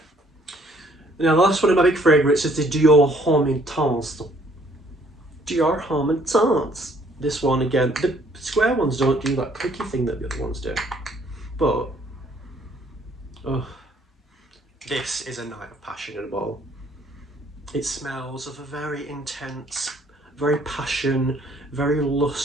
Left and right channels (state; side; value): normal; both; correlation 0.62